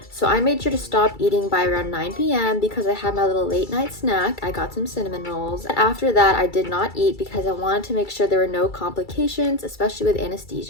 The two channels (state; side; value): late; right; 2.3 ms